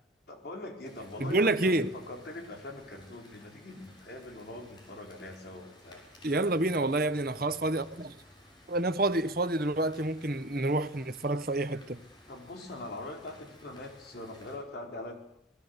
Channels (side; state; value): both; normal; correlation 0.34